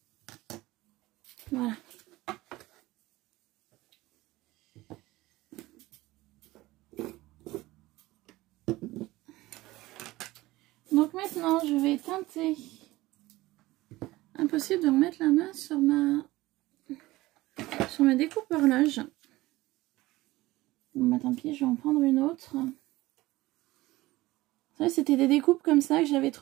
Voilà. Donc maintenant, je vais teinter. Impossible de remettre la main sur ma découpe horloge. Bon bah tant pis, je vais en prendre une autre. C'était des découpes comme ça que j'avais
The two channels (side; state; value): left; quieter; 18.6 dB